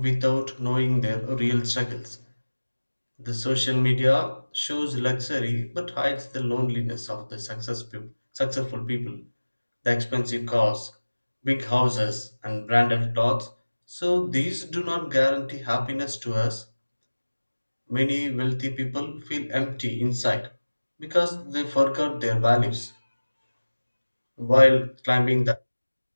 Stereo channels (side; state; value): both; inverted; correlation -1.00